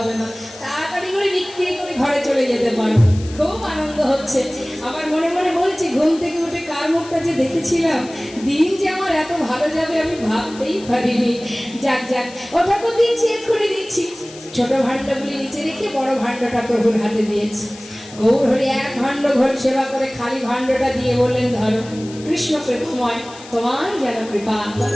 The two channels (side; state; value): left; noise; hiss, 18 dB below the sound